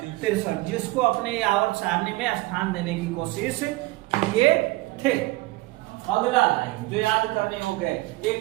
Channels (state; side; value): quieter; left; 20.4 dB